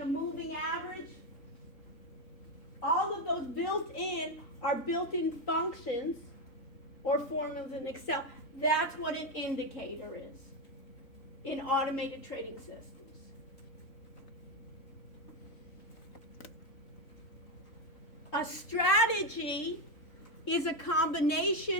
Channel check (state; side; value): late; right; 3.7 ms